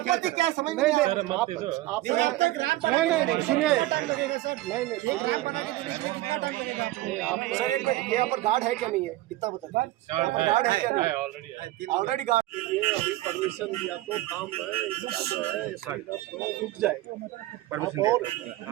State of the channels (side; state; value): left; quieter; 17.0 dB